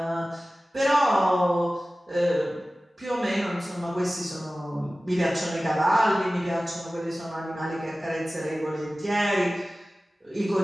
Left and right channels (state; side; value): normal; both; correlation 0.97